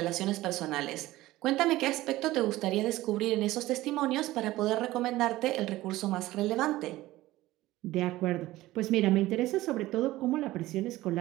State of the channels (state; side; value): quieter; left; 17.1 dB